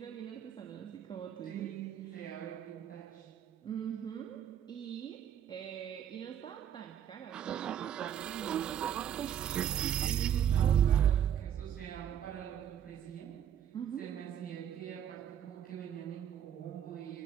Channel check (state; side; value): quieter; left; 9.6 dB